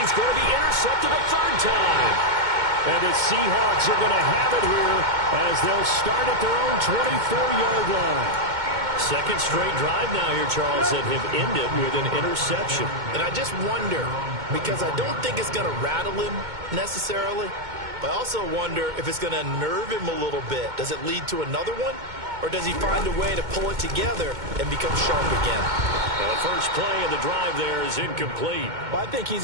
he's going to be intercepted a third time. And the Seahawks are going to have it here as they'll start at their own 24-yard line. Second straight drive now here, Charles, that have ended with an interception. And I just wonder, because I don't think it's going to rattle him necessarily, but I also wonder if it's going to nerve him a little bit. Does it lead to another one? Or does he find a way to pull it together and become sharp again? The first play of the drive there is incomplete. Well, I think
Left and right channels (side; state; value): left; late; 2.2 ms